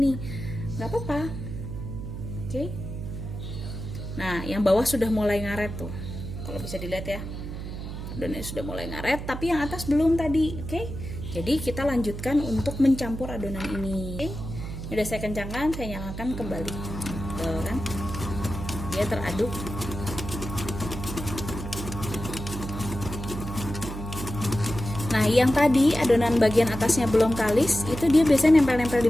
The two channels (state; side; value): noise; right; hum, 7 dB below the sound